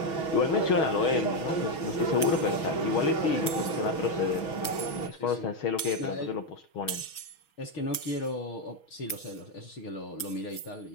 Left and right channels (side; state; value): right; late; 6.3 ms